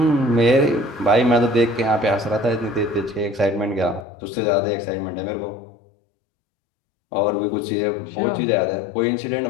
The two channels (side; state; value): right; drops out; at 4.0 s